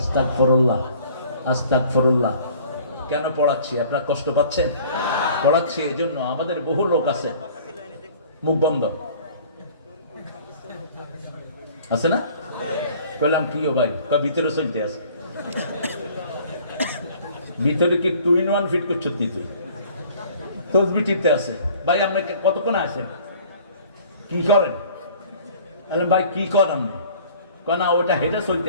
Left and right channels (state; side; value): inverted; both; correlation -0.51